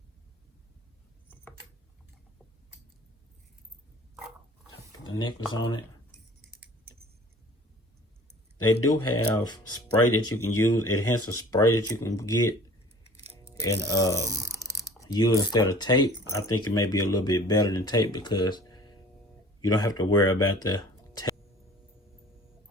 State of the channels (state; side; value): normal; both; correlation 0.47